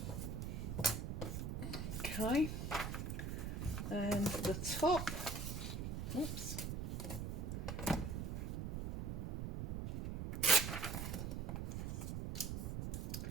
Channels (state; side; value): noise; right; rumble, 3 dB below the sound